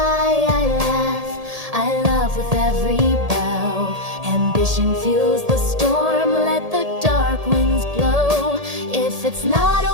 I laugh, I love with every bow. Ambition fuels the storm, let the dark winds blow. If it's not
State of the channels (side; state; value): left; late; 1.8 ms